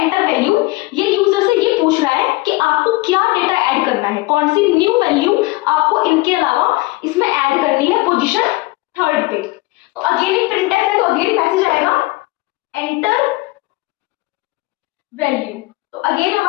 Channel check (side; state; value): right; quieter; 21.7 dB